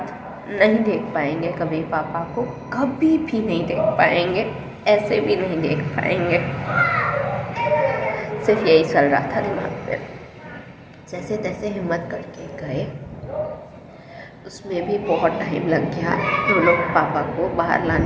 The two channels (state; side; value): identical; both; correlation 1.00